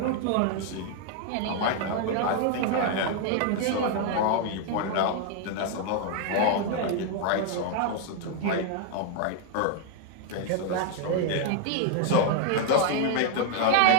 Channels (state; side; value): different; both; correlation 0.00